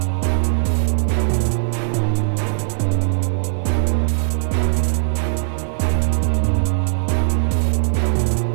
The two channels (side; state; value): left; silent; 59 dB below the other